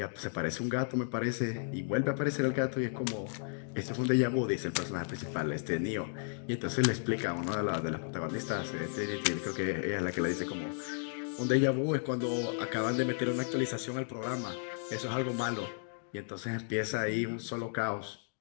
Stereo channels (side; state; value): right; silent; digital silence